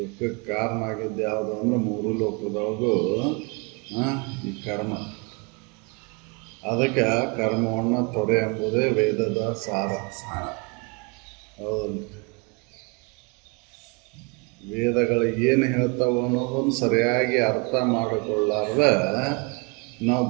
ಕಾರಣ ಆಗಿದ್ದು ಯಾವುದು ಅಂದ್ರೆ ಮೂರು ಲೋಕದೊಳಗೂ ಈ ಕರ್ಮ. ಅದಕ್ಕೆ ಕರ್ಮವನ್ನು ತೊರೆ ಎಂಬುದೇ ವೇದದ ಸಾರ. ಹೌದಲ್ಲ. ವೇದಗಳು ಏನು ಹೇಳ್ತಾವ ಅನ್ನೋದನ್ನು ಸರಿಯಾಗಿ ಅರ್ಥ ಮಾಡಿಕೊಳ್ಳಾರ್ದ ನಾವು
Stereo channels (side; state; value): left; quieter; 30.8 dB